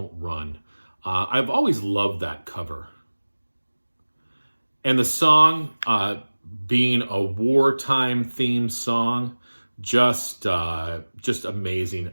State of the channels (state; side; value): inverted; both; correlation -1.00